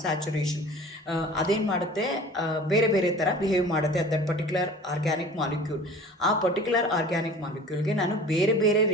ಅದೇನು ಮಾಡುತ್ತೆ, ಬೇರೆ ಬೇರೆ ಥರ ಬಿಹೇವ್ ಮಾಡುತ್ತೆ ದಟ್ ಪರ್ಟಿಕ್ಯುಲರ್ ಆರ್ಗ್ಯಾನಿಕ್ ಮಾಲಿಕ್ಯೂಲ್. ಆ ಪರ್ಟಿಕ್ಯುಲರ್ ಆರ್ಗ್ಯಾನಿಕ್ ಮಾಲಿಕ್ಯೂಲ್ಗೆ ನಾನು ಬೇರೆ ಬೇರೆ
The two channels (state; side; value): normal; both; correlation 0.43